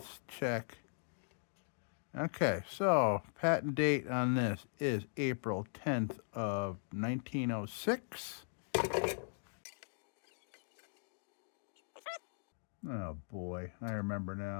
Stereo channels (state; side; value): silent; right; digital silence